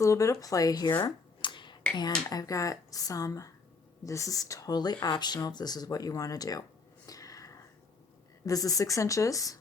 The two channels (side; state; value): right; quieter; 4.3 dB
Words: little bit of play here. And I've got this is totally optional if this is what you want to do. This is 6 inches